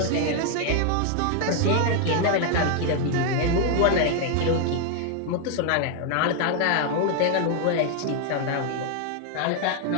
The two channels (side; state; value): both; different; correlation 0.00